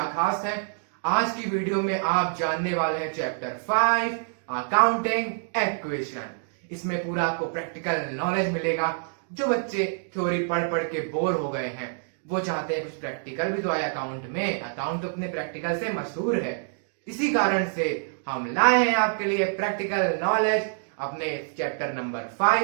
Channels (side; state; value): left; silent; digital silence